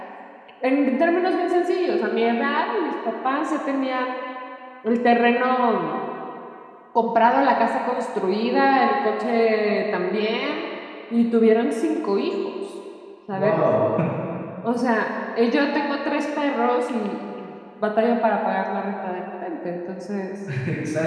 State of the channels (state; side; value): identical; both; correlation 1.00